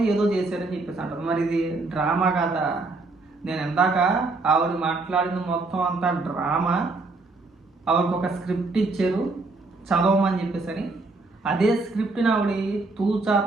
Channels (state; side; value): quieter; left; 3.5 dB